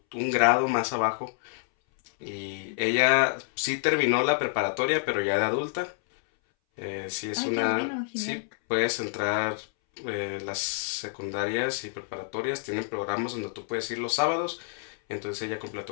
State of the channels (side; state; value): right; silent; 59 dB below the other